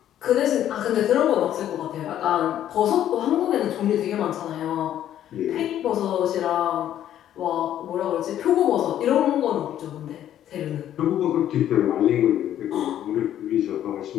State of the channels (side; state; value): right; quieter; 11.3 dB